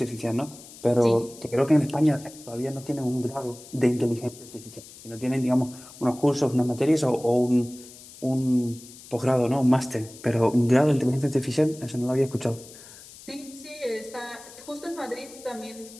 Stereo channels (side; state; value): left; noise; hiss, 19 dB below the sound